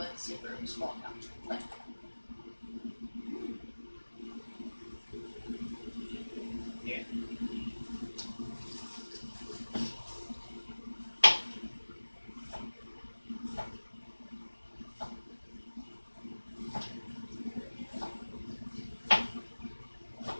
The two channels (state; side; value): inverted; both; correlation -1.00